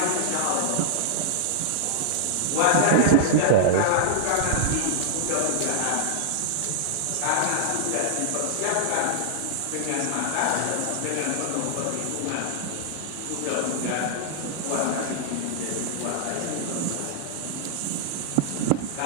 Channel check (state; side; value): different; both; correlation -0.01